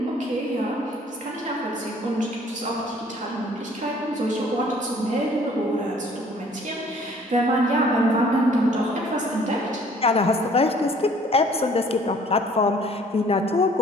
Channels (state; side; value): normal; both; correlation 0.56